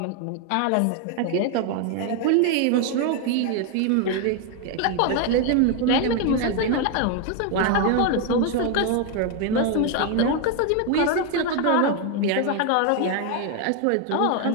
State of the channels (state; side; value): different; both; correlation 0.01